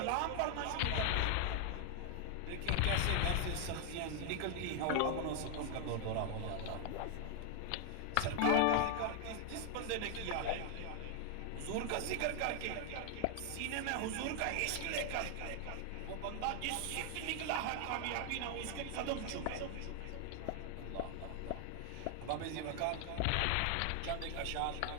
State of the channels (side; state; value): both; different; correlation 0.00